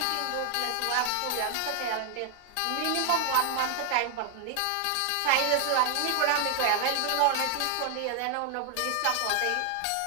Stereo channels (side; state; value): both; different; correlation 0.00